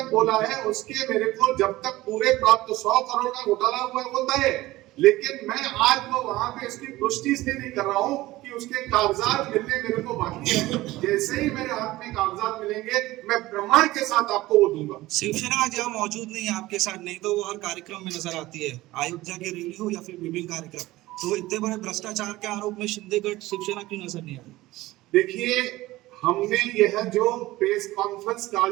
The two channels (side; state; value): left; quieter; 17.9 dB